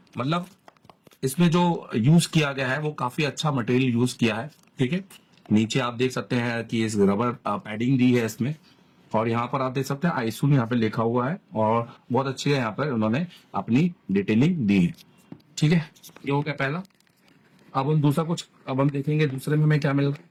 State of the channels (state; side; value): identical; both; correlation 1.00